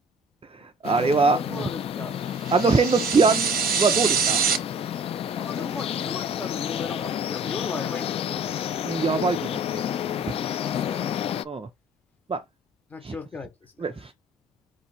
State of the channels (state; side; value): normal; both; correlation 0.49